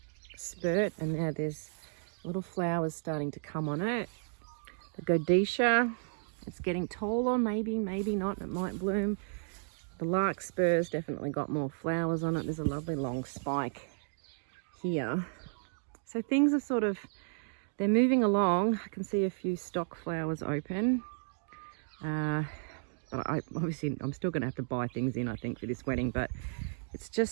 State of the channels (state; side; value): silent; left; digital silence